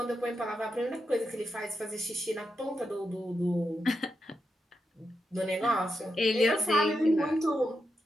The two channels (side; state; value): both; normal; correlation 0.86